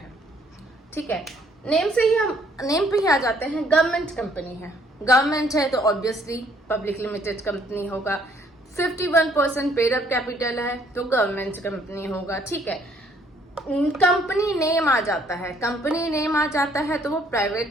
ठीक है, नेम पे ही आ जाते हैं। गवर्नमेंट कंपनी है, गवर्नमेंट है तो ऑब्वियसली पब्लिक लिमिटेड कंपनी होगा। 51% पेड अप कैपिटल है तो गवर्नमेंट कंपनी होगा। ठीक है, कंपनी नेम आ जाता है, कंपनी नेम आ जाता है तो वो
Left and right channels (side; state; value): both; normal; correlation 0.64